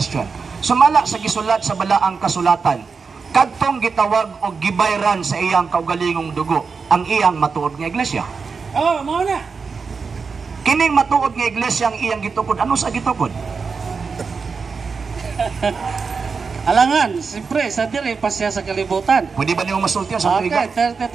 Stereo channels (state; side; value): quieter; left; 5.1 dB